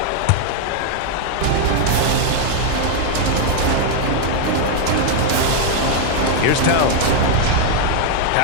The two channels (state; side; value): different; both; correlation 0.00